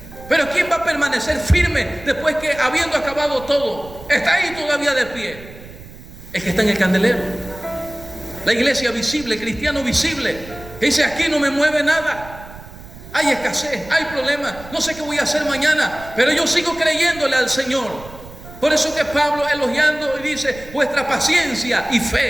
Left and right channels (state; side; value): noise; right; rumble, 17 dB below the sound